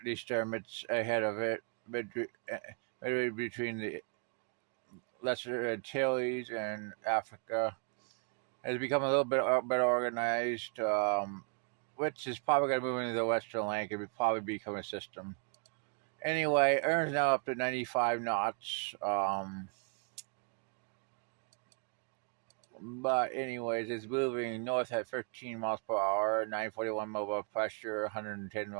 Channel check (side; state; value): left; quieter; 38.7 dB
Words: disturbance ahead of it between the Lesser Antilles and Africa. Has become a little bit better organized, which is probably going to move into the Western Atlantic and probably become a system. Anyway, Erin's now up to 95 knots. But anyways, it's moving north at 13 miles per hour, 941 mobile pressure, 110